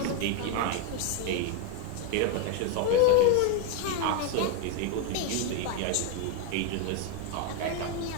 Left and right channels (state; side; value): different; both; correlation 0.01